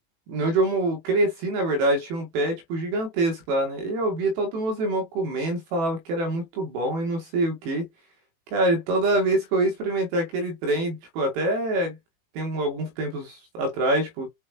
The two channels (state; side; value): late; left; 18 ms